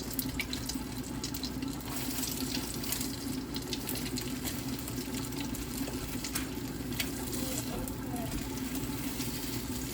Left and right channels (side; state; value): both; identical; correlation 1.00